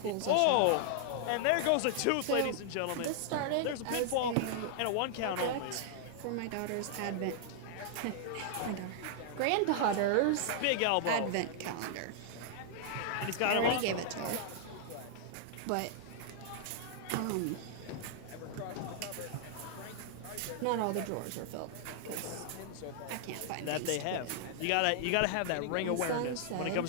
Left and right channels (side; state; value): both; different; correlation -0.01